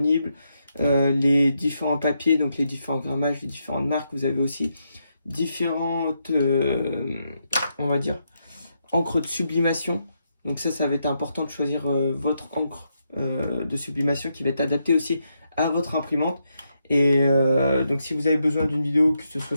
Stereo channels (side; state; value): both; inverted; correlation -0.81